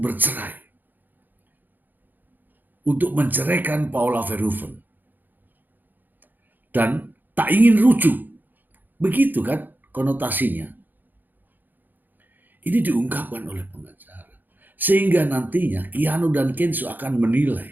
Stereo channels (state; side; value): late; left; 0.087 ms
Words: bercerai, untuk menceraikan Paula Verhoeven, dan tak ingin rujuk. Begitu kan konotasinya. Ini diungkapkan oleh pengacara. Sehingga nantinya Keanu dan Kenzo akan